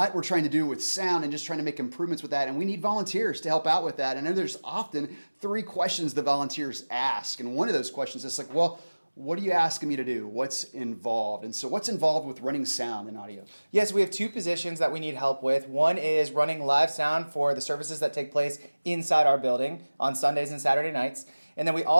we're trying to do with sound and just trying to make improvements with that, and we need volunteers to help out with that. And then there's often 3 questions the volunteers ask, and one of those questions is like, well, what are you asking me to do? What's involved? And so what's involved with running sound and audio? Yes, we have 2 positions that we need help with. One is running live sound for the services that take place inside our building on Sundays and Saturday nights. And then we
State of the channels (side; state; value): both; inverted; correlation -1.00